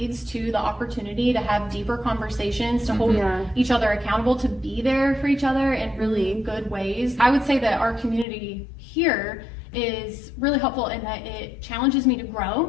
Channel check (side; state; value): right; drops out; at 8.2 s